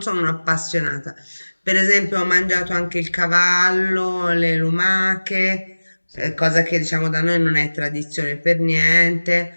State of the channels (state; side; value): inverted; both; correlation -1.00